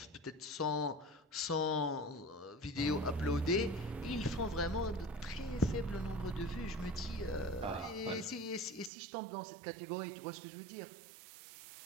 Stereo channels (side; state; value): left; drops out; at 8.9 s